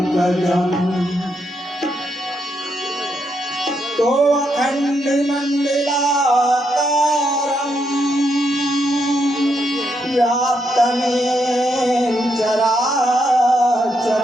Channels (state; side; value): normal; both; correlation 0.80